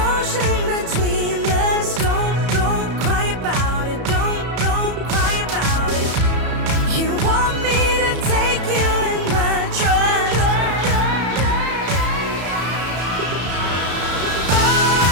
between us. Don't cry about it. Don't cry about it. You want me to take you in my trust.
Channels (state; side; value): late; left; 33 ms